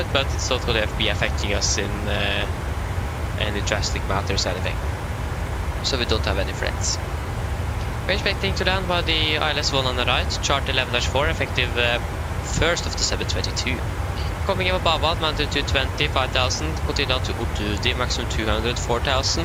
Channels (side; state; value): both; identical; correlation 1.00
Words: but it's not going to be affecting us in any drastic matters or anything. So we don't have any threats. We're expecting to land by the ILS-1 on the right, chart 11-4, effective 1st of December 2022. Coming over Babad, mounted to 20, 5,000, continue down to Utudi, maximum 200,